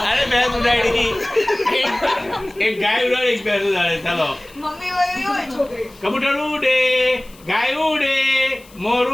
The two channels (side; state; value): left; noise; hiss, 25 dB below the sound